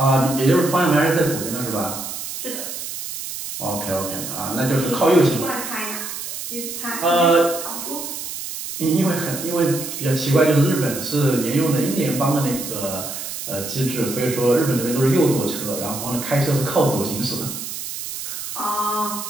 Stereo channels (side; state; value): right; noise; hiss, 7 dB below the sound